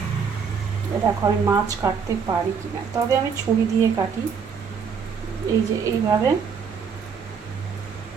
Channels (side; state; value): left; quieter; 6.3 dB